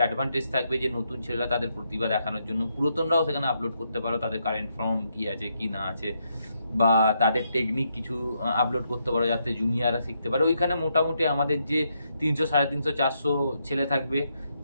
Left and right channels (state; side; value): inverted; both; correlation -0.78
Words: অ্যাডভান্টেজ থাকবে, যে নতুন ছেলেরা তাদের প্রতিভা দেখানোর জন্য, পুরাতনরাও সেখানে আপলোড করতে পারো, তাদের কারেন্ট ফর্ম কি আছে কি না আছে, বা তাদের টেকনিক কিছু আপলোড করতে পারো, যাতে জুনিয়ররা শিখতে পারে। ওইখানে মোটামুটি আমাদের যে 300, 350, 400 ছেলে থাকবে,